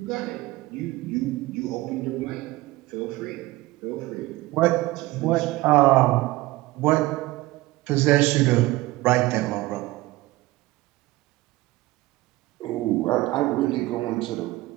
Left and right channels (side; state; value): left; quieter; 19.1 dB